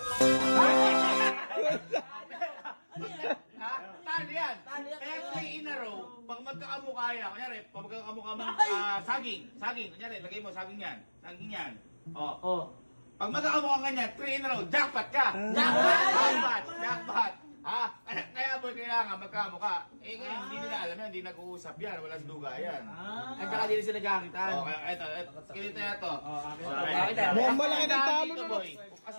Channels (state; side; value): inverted; both; correlation -1.00